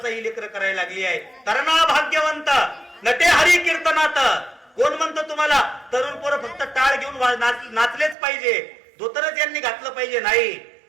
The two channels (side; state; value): left; drops out; at 8.2 s